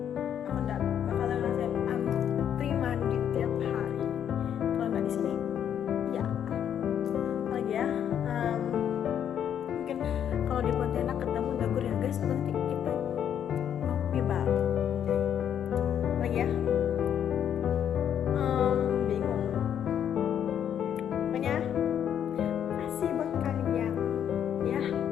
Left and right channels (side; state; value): right; quieter; 9.2 dB